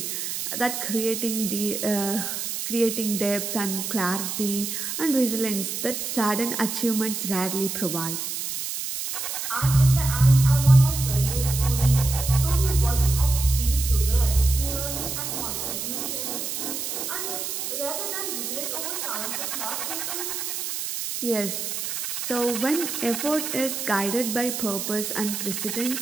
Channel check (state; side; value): noise; right; hiss, 4 dB below the sound